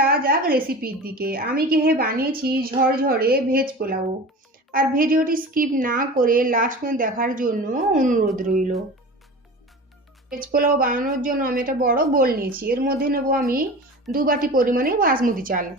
যাক রেসিপির দিকে। আমি বানিয়েছি ঝরঝরে ভেজ পোলাও। আর ভিডিওটি স্কিপ না করে লাস্ট পর্যন্ত দেখার জন্য অনুরোধ রইল। ভেজ পোলাও বানানোর জন্য আমি একটা বড় বোল নিয়েছি। এর মধ্যে নেব আমি 2 বাটি পরিমাণে বাসমতি চাল।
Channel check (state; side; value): normal; both; correlation 0.35